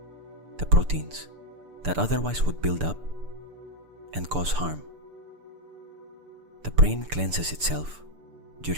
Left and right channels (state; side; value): late; left; 6.8 ms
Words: The proteins that otherwise would build up and cause harm. The brain cleanses itself